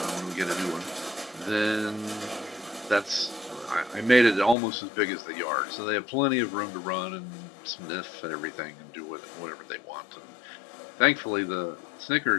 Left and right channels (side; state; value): right; drops out; at 4.5 s